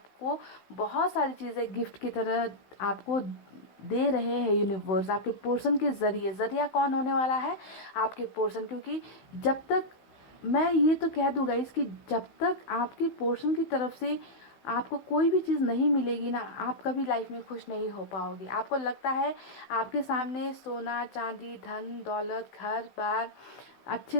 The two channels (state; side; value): late; right; 16 ms